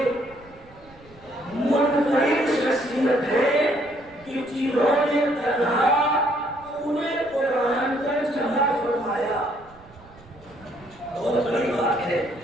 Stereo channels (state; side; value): noise; right; rumble, 25 dB below the sound